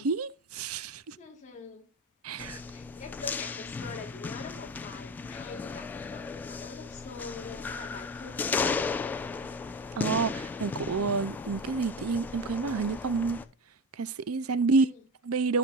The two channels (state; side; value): normal; both; correlation 0.26